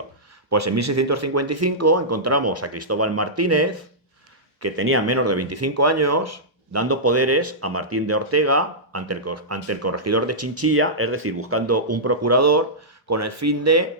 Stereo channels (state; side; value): normal; both; correlation -0.13